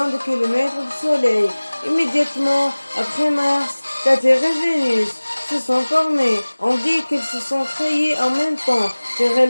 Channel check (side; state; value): both; inverted; correlation -1.00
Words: de kilomètres du Soleil. Immédiatement après Mars, la Terre et Vénus se sont formées. On dit qu'elles se sont créées en même temps, car